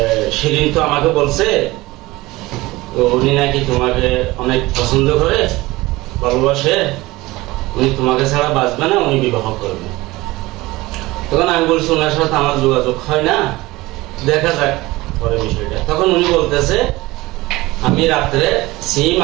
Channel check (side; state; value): left; quieter; 20.0 dB